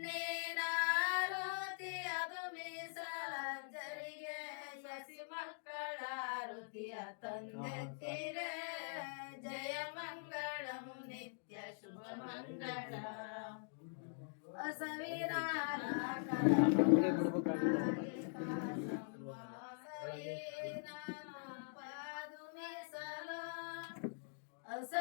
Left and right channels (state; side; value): silent; right; digital silence